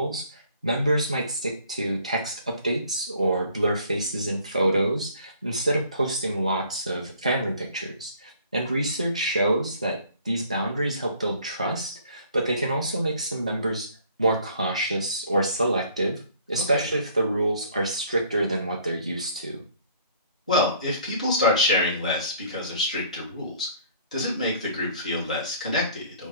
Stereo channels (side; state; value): both; inverted; correlation -0.57